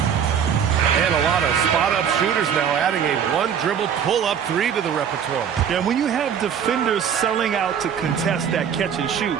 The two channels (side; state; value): left; quieter; 8.1 dB